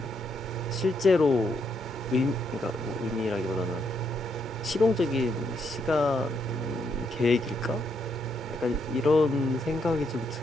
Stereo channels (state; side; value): normal; both; correlation 0.76